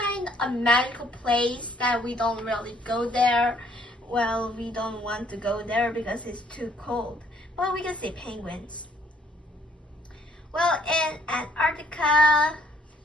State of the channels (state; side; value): normal; both; correlation 0.64